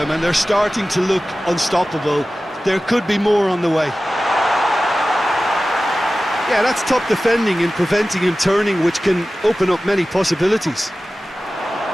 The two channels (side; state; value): both; normal; correlation 0.96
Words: and they're starting to look unstoppable. There could be more on the way. Yeah, that's top defending and preventing him turning, which can open up many possibilities.